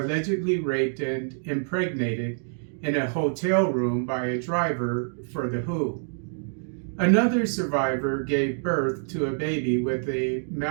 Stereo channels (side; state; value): left; silent; digital silence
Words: raped and impregnated in a hotel room by a driver for the WHO. Another survivor gave birth to a baby with a